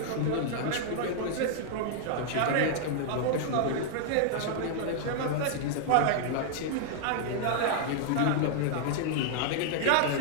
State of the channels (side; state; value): both; different; correlation 0.00